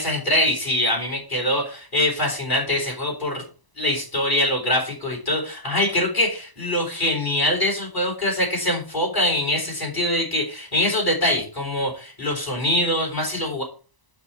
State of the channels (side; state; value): right; late; 1.0 ms